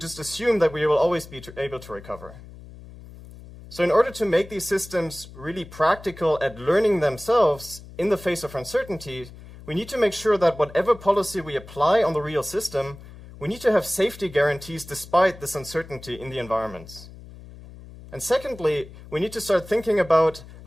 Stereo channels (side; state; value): left; noise; hum, 17 dB below the sound